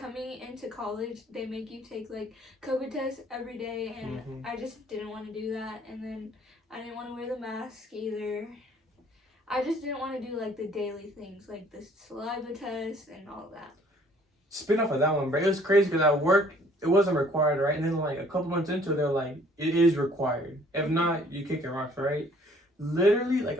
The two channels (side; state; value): both; normal; correlation 0.58